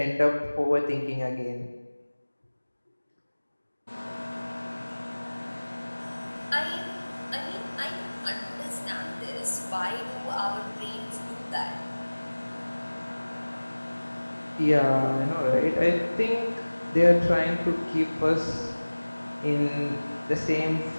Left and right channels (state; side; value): inverted; both; correlation -1.00